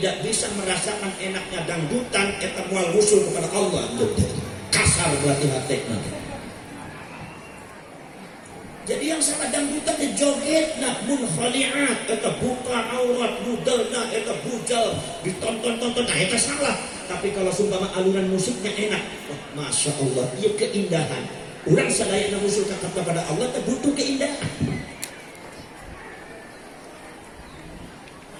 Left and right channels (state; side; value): identical; both; correlation 1.00